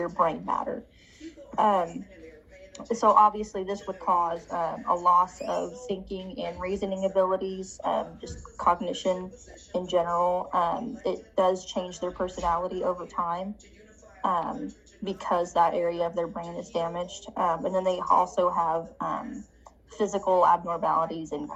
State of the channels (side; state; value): both; identical; correlation 1.00